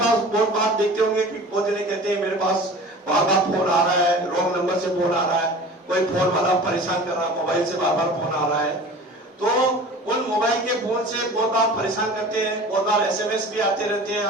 बहुत बार देखते होंगे कि बहुत जने कहते हैं मेरे पास बार बार फोन आ रहा है, रॉन्ग नंबर से फोन आ रहा है, कोई फोन वाला परेशान कर रहा है, मोबाइल से बार बार फोन आ रहा है। तो उन मोबाइल के फोन से बहुत बार परेशान करते हैं, बहुत बार एसएमएस भी आते रहते हैं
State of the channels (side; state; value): both; normal; correlation 0.40